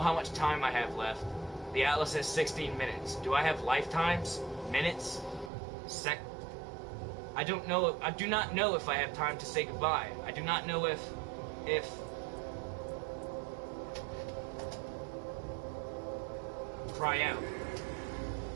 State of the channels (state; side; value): drops out; left; at 5.5 s